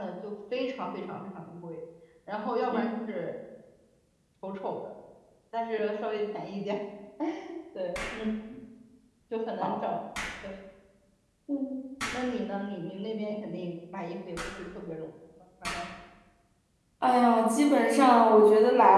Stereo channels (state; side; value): identical; both; correlation 1.00